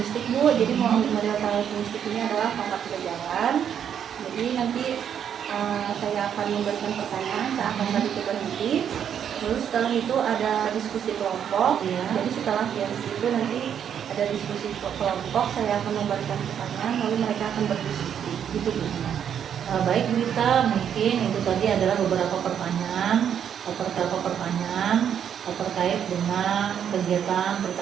Bu. Jadi model karakteristik ini adalah pangkat kejalan. Jadi nanti saya akan memberikan pertanyaan, saya akan beri berhenti. Lalu setelah itu ada diskusi kelompok. Ya. Jadi setelah itu nanti ada diskusi kelompok, saya akan memberikan pertanyaan, lalu mereka akan berdiskusi. Gitu Bu. Baik Bu Dita, mungkin itu tadi adalah beberapa pertanyaan terkait dengan kegiatan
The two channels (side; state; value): left; quieter; 8.7 dB